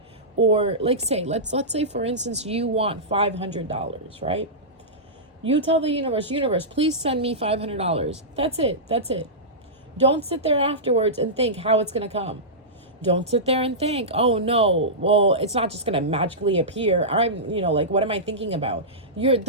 Or like let's say, for instance, you want $500, right? You tell the universe, please send me $500. That's it. Don't sit there afterwards and think how it's going to come. Don't sit there and think, oh no, well, it's not just going to magically appear. What am I thinking about?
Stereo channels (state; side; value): normal; both; correlation -0.15